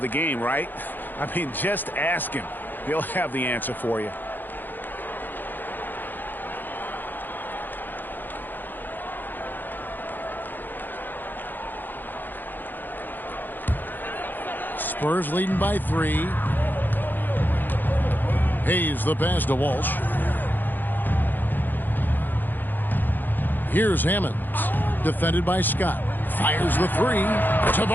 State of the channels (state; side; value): late; right; 0.090 ms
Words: the game, right? I mean, just ask him. He'll have the answer for you. Spurs leading by 3. Hayes the pass to Walsh. Here's Hammonds, defended by Scott. Fires the 3.